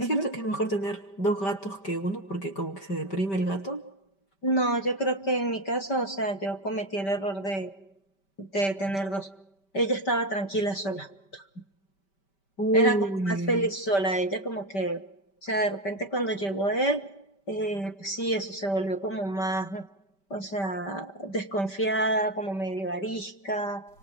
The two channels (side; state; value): right; late; 5.1 ms